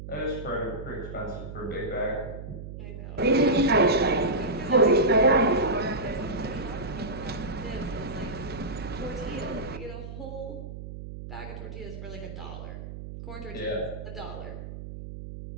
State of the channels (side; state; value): right; noise; hum, 10 dB below the sound